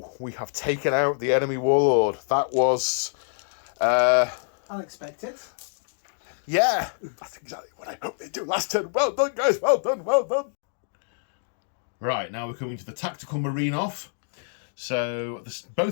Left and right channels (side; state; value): right; silent; digital silence